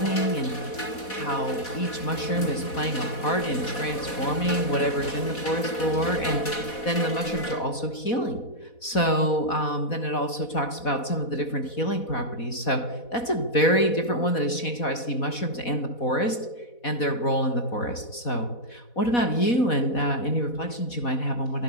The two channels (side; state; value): right; late; 4.1 ms